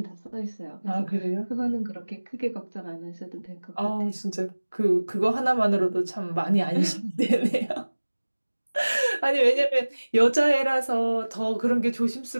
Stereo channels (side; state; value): both; inverted; correlation -1.00